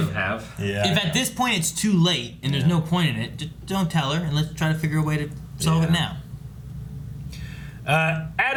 them have. Yeah. If at this point it's too late and there's no point in it, just don't tell her, and let's try to figure a way to solve it now.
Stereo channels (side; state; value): both; identical; correlation 1.00